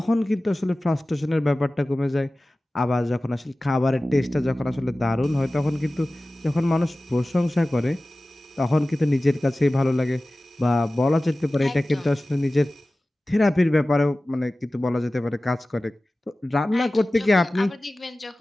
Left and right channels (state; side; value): normal; both; correlation 0.97